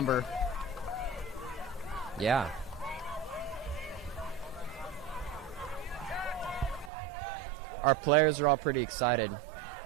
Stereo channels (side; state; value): left; drops out; at 6.9 s